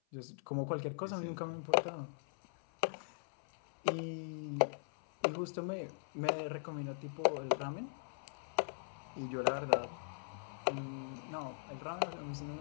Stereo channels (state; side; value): silent; right; 51 dB below the other